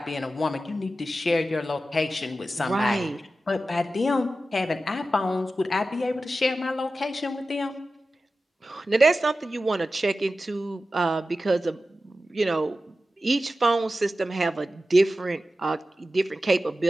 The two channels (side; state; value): both; normal; correlation 0.93